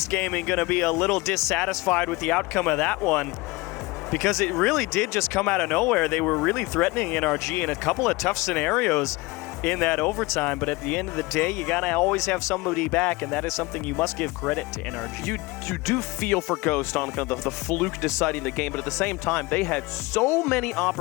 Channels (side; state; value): right; quieter; 22.9 dB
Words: Gaming going to be a little dissatisfied with the outcome of that one, because it really did just come out of nowhere. They were really threatening NRG in a couple of tough scenarios in that overtime, but at the end of the day, you gotta always have somebody back, and that is something you must give credit to NRG. You do feel for Ghost on kind of the fluke deciding the game, but at the same time, they had so many